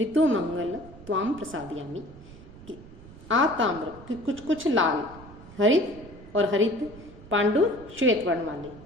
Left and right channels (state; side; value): noise; right; rumble, 18 dB below the sound